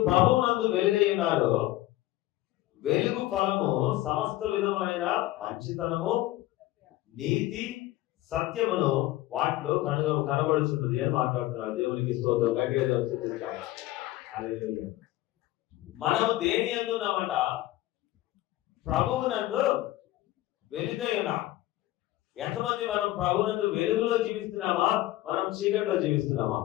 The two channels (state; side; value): quieter; right; 16.1 dB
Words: ప్రభువునందు వెలుగై ఉన్నారు, వెలుగు ఫలము సమస్త విధములైన మంచితనము, నీతి, సత్యమును వాటిలో కనబడుచున్నది అని మాట్లాడుతున్నారు. దేవునికి స్తోత్రం. మనము దేని యందు ఉన్నామంట? ప్రభువునందు వెలుగై ఉన్నాం. ఎంతమంది మనం ప్రభువునందు వెలుగులో జీవిస్తున్నామా, మనం చీకటిలో జీవిస్తున్నామా?